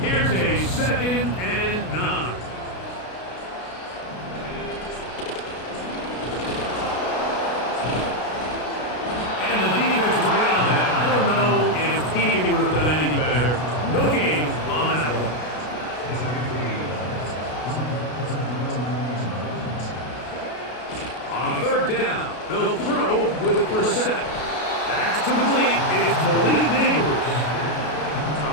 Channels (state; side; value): late; right; 33 ms